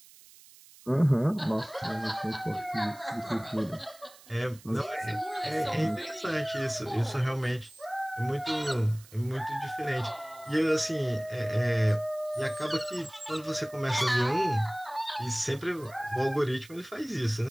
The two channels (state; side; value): noise; right; hiss, 22 dB below the sound